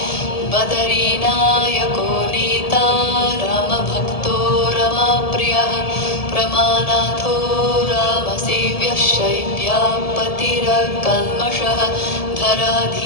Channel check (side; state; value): right; late; 1.7 ms